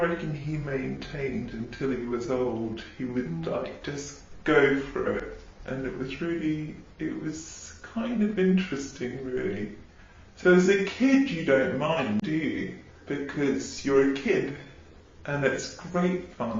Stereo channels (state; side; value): identical; both; correlation 1.00